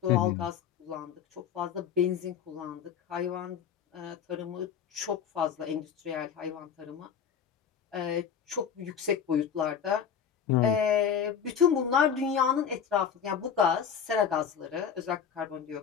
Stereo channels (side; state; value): right; quieter; 7.7 dB